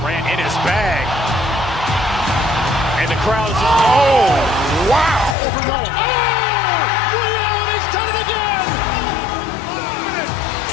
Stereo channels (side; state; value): right; drops out; at 5.4 s